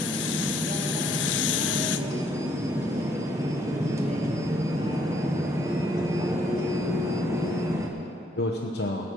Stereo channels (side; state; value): both; normal; correlation 0.68